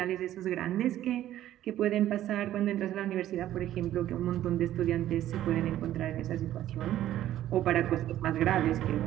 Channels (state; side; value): quieter; left; 12.8 dB